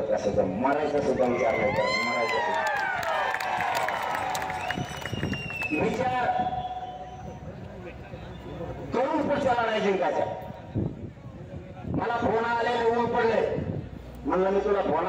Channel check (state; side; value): identical; both; correlation 1.00